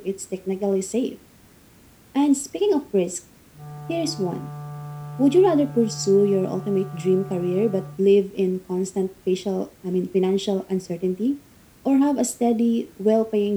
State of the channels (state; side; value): identical; both; correlation 1.00